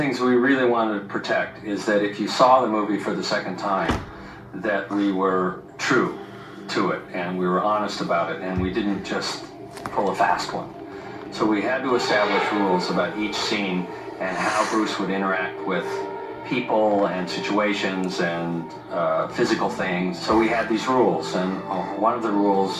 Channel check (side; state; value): both; identical; correlation 1.00